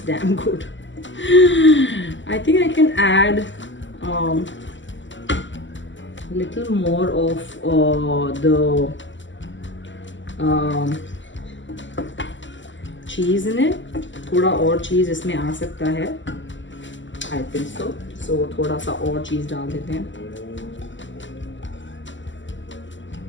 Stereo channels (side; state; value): right; late; 0.54 ms